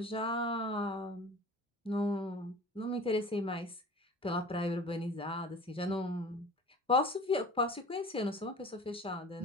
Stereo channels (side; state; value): both; normal; correlation 0.42